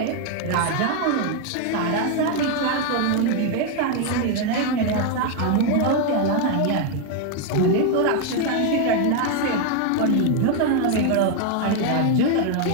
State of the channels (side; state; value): both; different; correlation 0.01